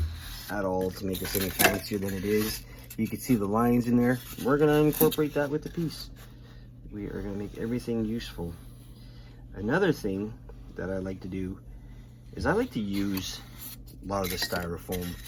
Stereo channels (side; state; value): both; identical; correlation 1.00